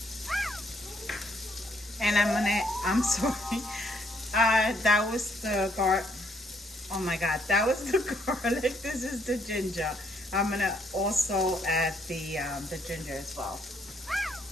and I'm sorry, that was the oh my god, that was the garlic. This is the ginger. I'm gonna also add the ginger as well.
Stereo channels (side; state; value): both; normal; correlation 0.70